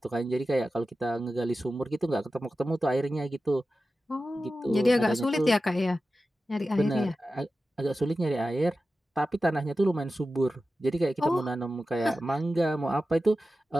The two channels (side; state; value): both; normal; correlation 0.93